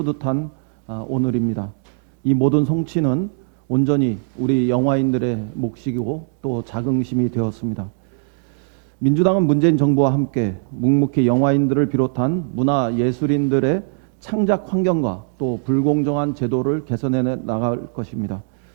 오늘입니다. 이 모든 성취는 온전히 우리 영화인들의 몫이고 또 자긍심이 되었습니다. 민주당은 문재인 정부와 함께 묵묵히 영화인들을 비롯한 문화예술인들의 창작 환경과 또 불공정한 제도를 개선해 나갈 것입니다.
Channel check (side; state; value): left; silent; 65 dB below the other